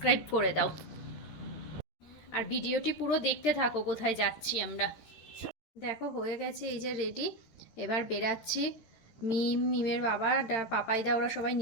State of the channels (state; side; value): late; right; 13 ms